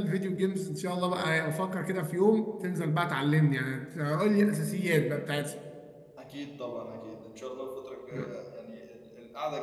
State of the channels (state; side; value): identical; both; correlation 1.00